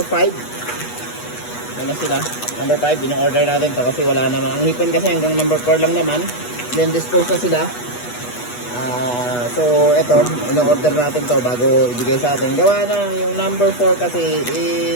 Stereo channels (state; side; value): late; right; 8.2 ms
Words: 5. Ano sila? Number 5, in-order natin to kasi wala naman. Ang hipon kasi hanggang number 4 lang naman. Then dispose na sila. So eto, in-order natin to bago ibigay sa atin. Gawa na yung number 4 kasi